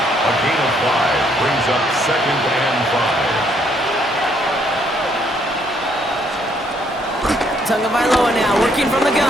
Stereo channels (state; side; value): normal; both; correlation 0.69